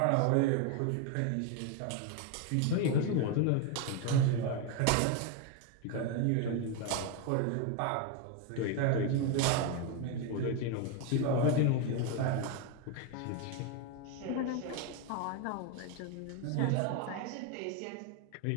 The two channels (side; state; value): both; different; correlation 0.02